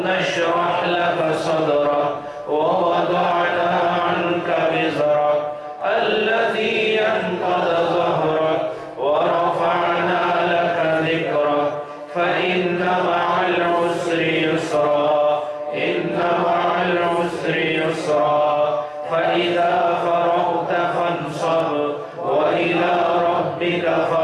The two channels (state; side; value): identical; both; correlation 1.00